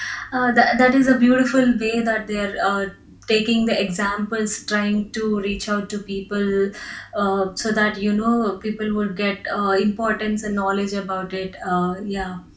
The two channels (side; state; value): both; identical; correlation 1.00